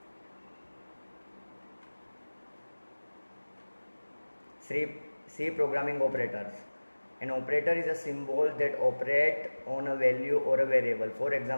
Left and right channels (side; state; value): both; inverted; correlation -1.00